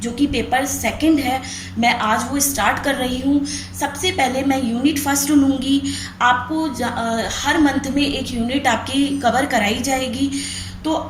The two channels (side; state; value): both; identical; correlation 1.00